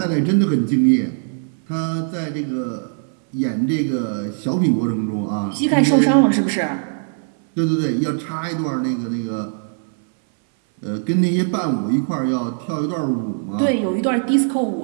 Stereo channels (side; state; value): left; silent; 62 dB below the other